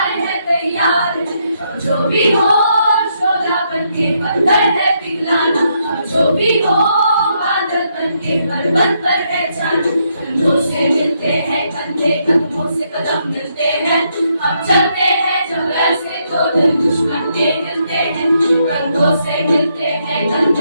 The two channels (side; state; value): both; inverted; correlation -0.76